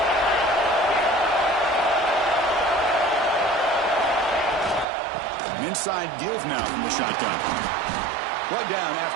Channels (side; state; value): left; drops out; at 4.9 s